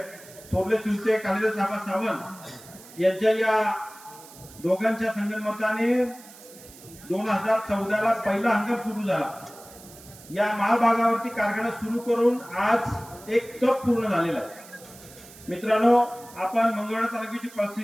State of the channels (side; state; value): right; noise; hiss, 20 dB below the sound